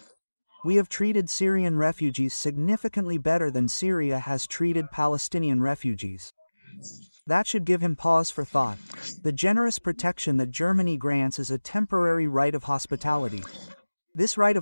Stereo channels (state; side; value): inverted; both; correlation -1.00